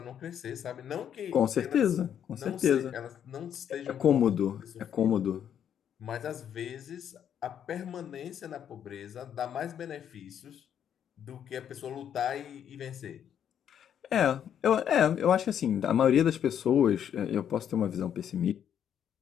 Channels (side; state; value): right; quieter; 9.2 dB